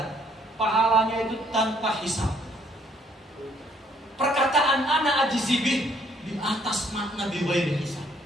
pahalanya itu tanpa hisab. Perkataan ana ajzibih di atas makna bighairi hisab.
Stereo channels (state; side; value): normal; both; correlation 0.65